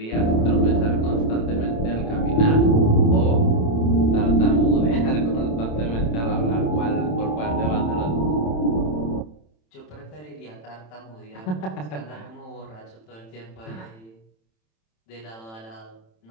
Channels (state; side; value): late; right; 27 ms